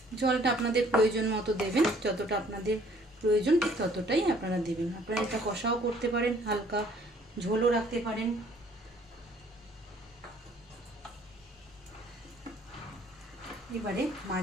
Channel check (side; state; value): both; normal; correlation 0.59